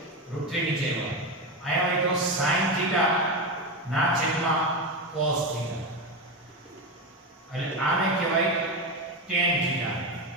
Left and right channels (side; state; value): both; normal; correlation 0.16